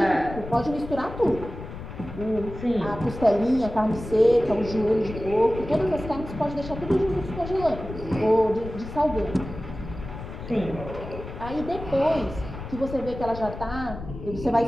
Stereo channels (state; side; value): noise; left; rumble, 11 dB below the sound